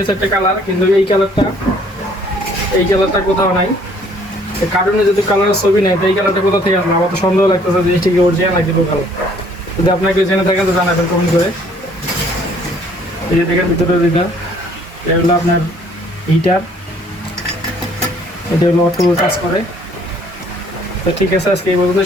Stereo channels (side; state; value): both; normal; correlation 0.60